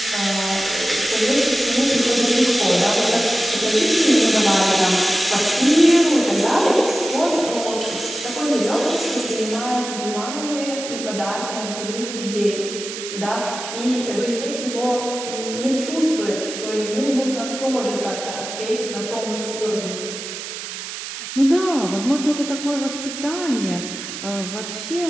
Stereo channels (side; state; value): right; noise; hiss, 8 dB below the sound